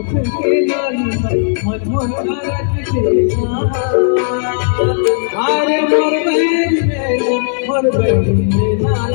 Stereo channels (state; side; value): silent; right; digital silence